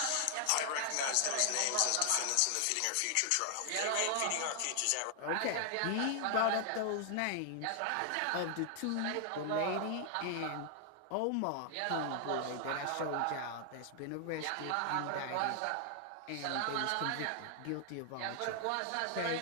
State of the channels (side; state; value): both; different; correlation 0.00